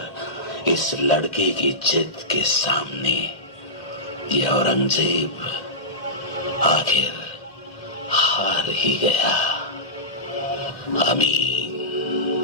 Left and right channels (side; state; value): right; late; 1.8 ms